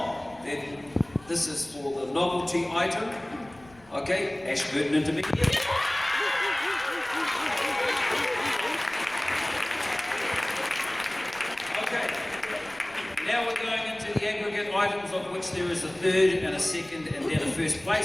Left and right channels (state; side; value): noise; left; rumble, 26 dB below the sound